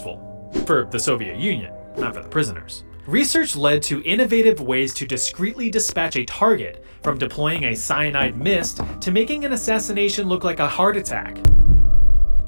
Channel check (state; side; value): inverted; both; correlation -1.00